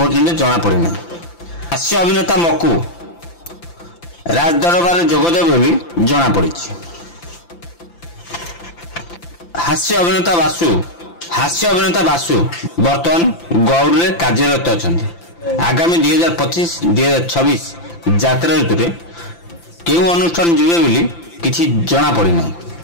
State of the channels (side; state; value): right; late; 5.9 ms